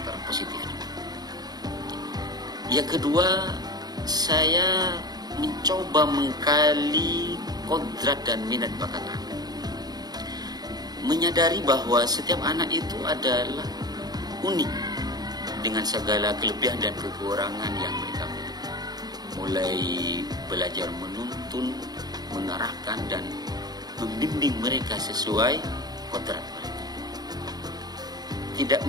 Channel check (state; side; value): late; left; 0.19 ms